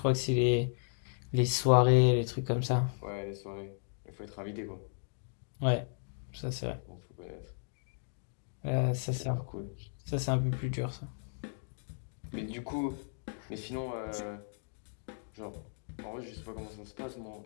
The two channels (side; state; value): right; silent; digital silence